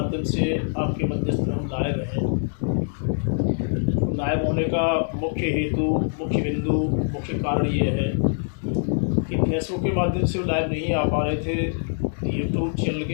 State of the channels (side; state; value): right; silent; digital silence